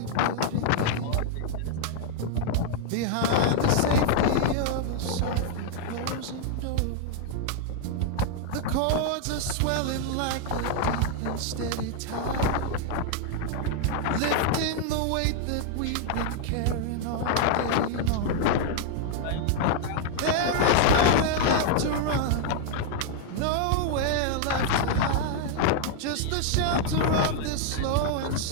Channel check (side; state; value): both; different; correlation 0.00